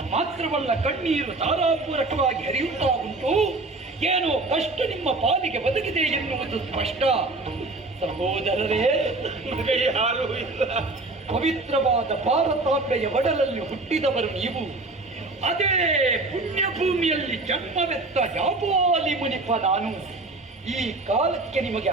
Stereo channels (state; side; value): quieter; left; 3.1 dB